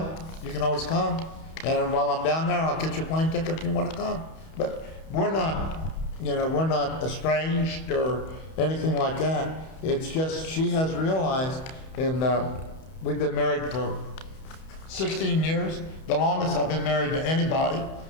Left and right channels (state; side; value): late; right; 31 ms